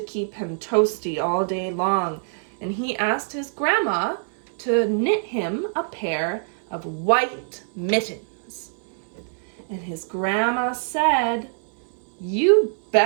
keep him toasty all day long. And he asked his grandma to knit him a pair of white mittens. And his grandma said, "You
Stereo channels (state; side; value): silent; left; 62 dB below the other